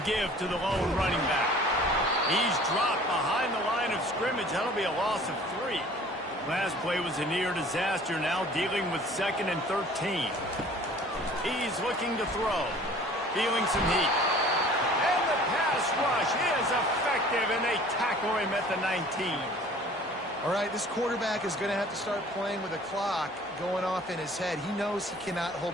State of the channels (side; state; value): both; normal; correlation 0.49